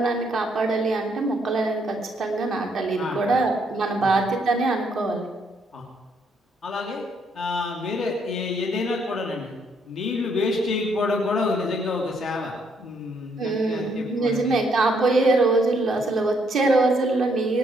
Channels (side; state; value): both; normal; correlation 0.71